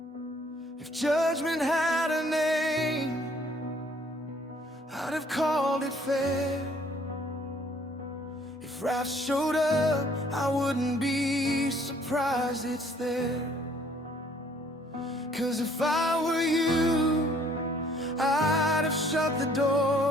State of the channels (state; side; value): normal; both; correlation 0.61